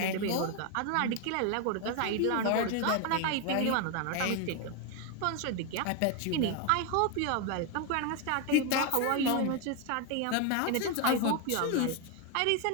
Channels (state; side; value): different; both; correlation 0.01